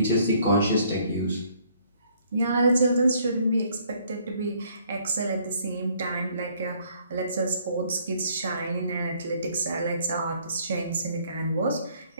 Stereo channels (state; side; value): inverted; both; correlation -0.64